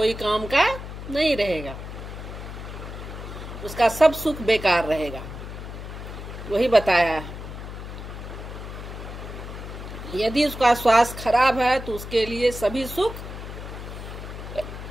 काम का नहीं रहेगा, उसका सब सुख बेकार रहेगा। वही बताया है। यदि उसका स्वास्थ्य खराब है तो उसके लिए सभी सुख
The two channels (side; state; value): left; noise; hum, 10 dB below the sound